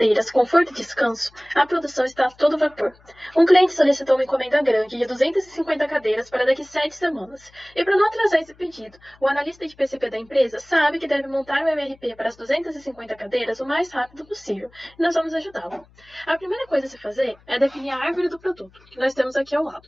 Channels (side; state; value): left; noise; hum, 29 dB below the sound